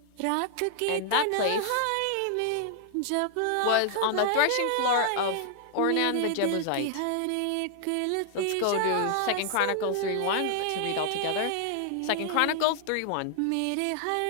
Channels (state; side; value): different; both; correlation 0.00